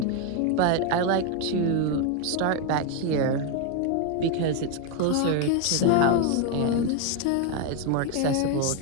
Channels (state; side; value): different; both; correlation 0.01